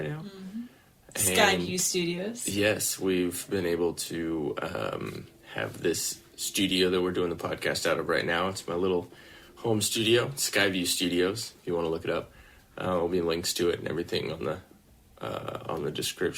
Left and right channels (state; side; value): identical; both; correlation 1.00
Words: now. Mm-hmm. SKYVIEW Studios. Yes, we've been able to have this studio that we're doing the podcast out of right now. It's my little home studio, SKYVIEW Studios. If you want to look it up, there'll be links to it and everything on the